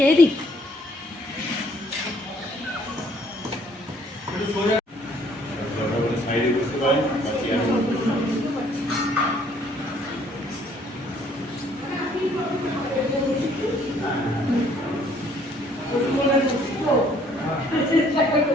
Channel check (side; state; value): both; normal; correlation 0.62